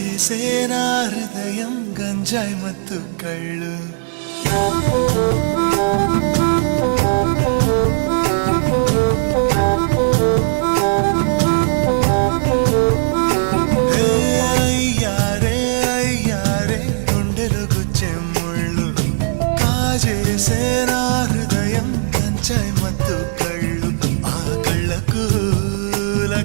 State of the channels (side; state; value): left; silent; digital silence